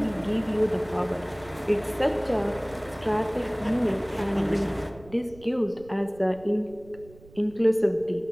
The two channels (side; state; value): right; noise; rumble, 23 dB below the sound